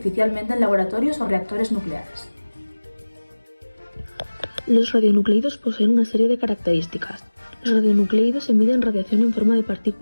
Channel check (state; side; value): inverted; both; correlation -1.00